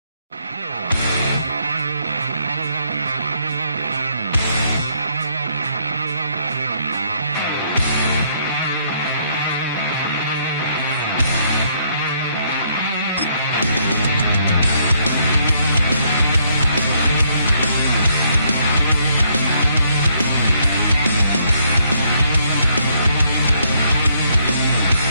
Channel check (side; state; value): both; inverted; correlation -0.70